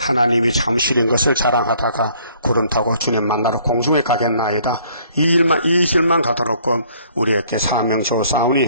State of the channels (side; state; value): both; inverted; correlation -0.61